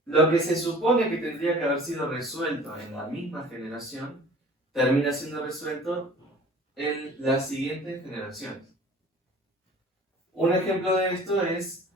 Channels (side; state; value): both; normal; correlation 0.46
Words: Lo que se supone que tendría que haber sido resuelto en la misma generación, termina siendo resuelto en las siguientes generaciones. Un ejemplo de esto es